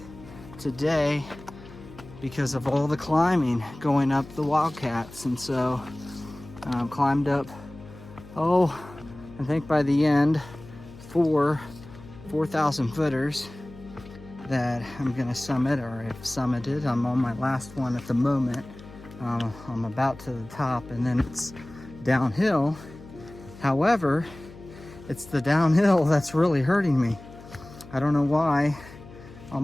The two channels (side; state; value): left; noise; hum, 18 dB below the sound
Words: today because of all the climbing going up the Wildcats. And so climbed up, I think by the end, 4,000 footers that I'm gonna summit, or have summited. I'm on my last one at the moment. I'm about to the top, and then it's downhill. However, it's the downhill that's really hurting me. I don't know why. On